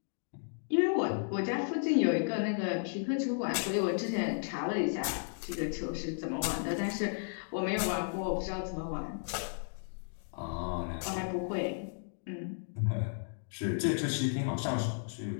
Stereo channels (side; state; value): right; silent; digital silence